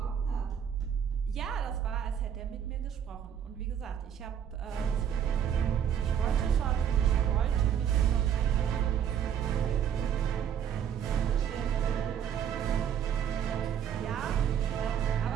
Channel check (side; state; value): left; quieter; 8.8 dB